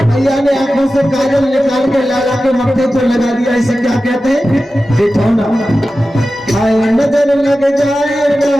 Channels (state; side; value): normal; both; correlation 0.94